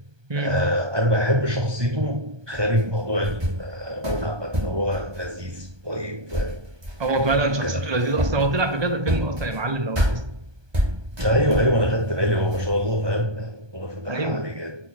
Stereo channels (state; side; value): late; left; 1.2 ms